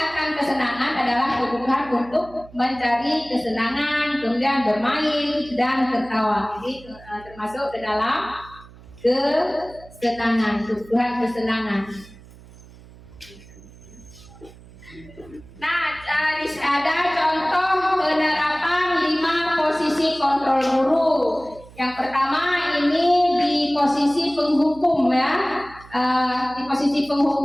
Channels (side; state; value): right; noise; hum, 21 dB below the sound